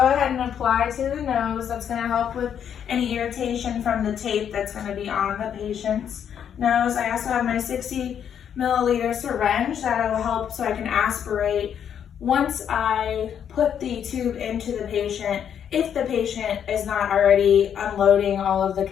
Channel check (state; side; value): quieter; right; 8.7 dB